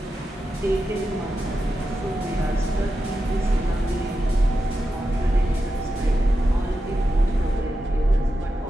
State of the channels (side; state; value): both; normal; correlation 0.89